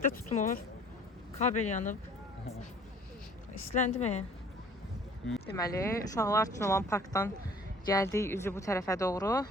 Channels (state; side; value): normal; both; correlation 0.52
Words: də tutmur. Kabel yanıb. İsləndi mi? Deməli, uşaqlar üçün olan parkdan gəldik üzü bu tərəfə doğru.